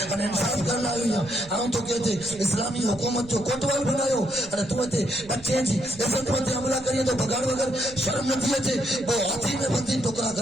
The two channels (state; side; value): noise; right; rumble, 19 dB below the sound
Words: ان انصاف کرنا ہے ہم تو کہتے اسلامی حکومت جو کوٹوال بناयो اور تو تے بچے جی عزت مند حملہ کریے تو بگاڑ وگر شرم نہ دیے تے وہ ہاتھی میں بندی ٹکرا